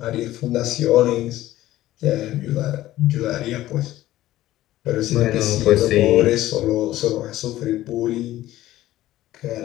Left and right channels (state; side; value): quieter; right; 15.0 dB